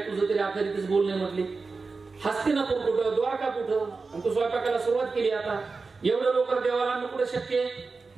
तुझं तरी अखेरीतच बोलणे म्हटले. हस्तिनापूर कुठं, द्वारका कुठं, आणि तू स्वयंपाकाला सुरुवात केली. आता एवढं लोक देवाला आणणं कुठे शक्य,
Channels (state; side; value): quieter; left; 4.2 dB